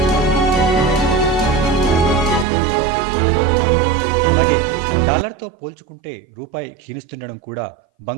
అలాగే డాలర్తో పోల్చుకుంటే రూపాయి క్షీణిస్తుండడం కూడా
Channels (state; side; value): drops out; left; at 2.5 s